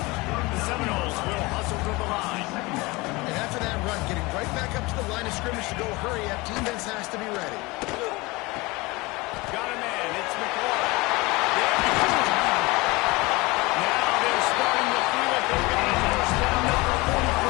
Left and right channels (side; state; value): right; quieter; 23.4 dB